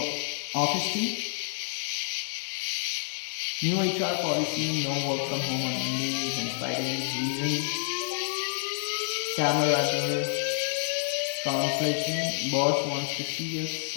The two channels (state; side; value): silent; right; 59 dB below the other